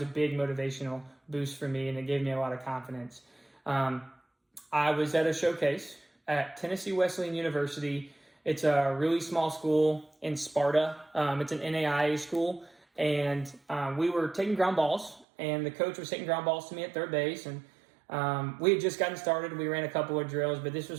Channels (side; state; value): left; drops out; at 15.2 s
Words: a big motivational boost for me, and it gave me a lot of confidence. I was at a showcase at Tennessee Wesleyan University. It's a really small school in Sparta. It's an NAIA school, and we were taking ground balls, and the coach was hitting ground balls to me at third base, and we had just gotten started. We ran a couple of drills, but this